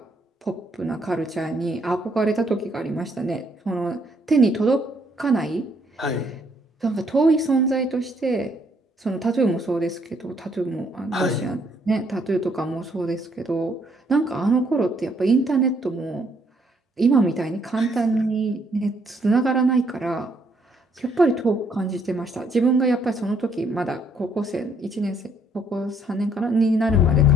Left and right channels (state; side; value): normal; both; correlation 0.69